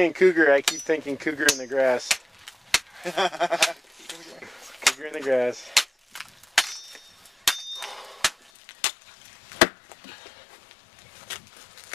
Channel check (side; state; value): right; drops out; at 8.3 s